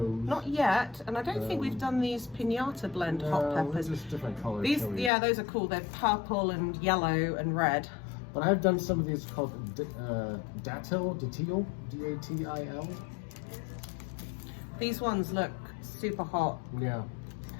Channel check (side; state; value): right; drops out; at 5.1 s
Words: Not yet, and I don't think we've done these pinata blend hot peppers. Just different colors. These, yeah, those are cool. They're purple and yellow and red. But I've done some of these called datil, D-A-T-I-L. These ones look super hot. Yeah.